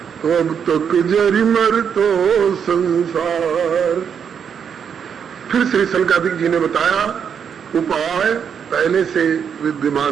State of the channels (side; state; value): left; quieter; 7.4 dB